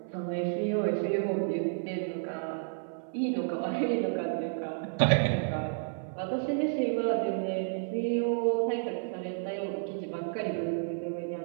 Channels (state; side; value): silent; left; 57 dB below the other